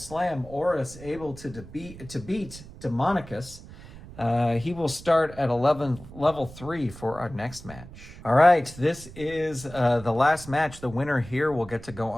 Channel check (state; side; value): noise; right; rumble, 16 dB below the sound